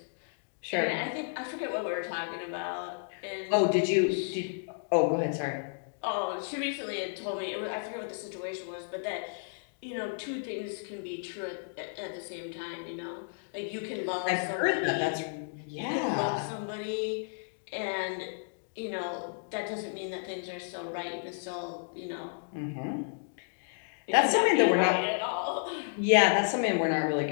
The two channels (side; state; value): right; silent; digital silence